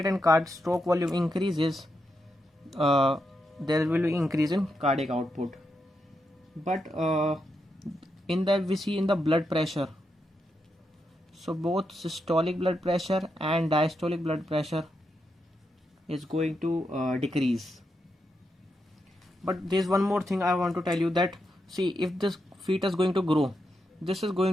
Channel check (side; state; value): both; normal; correlation 0.84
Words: and stroke volume increases, there will be increase in cardiac output. But we see in the blood pressure, so both systolic blood pressure and diastolic blood pressure is going to decrease. But there's one more thing I want to tell you, that see, if this fetus is going to grow, this is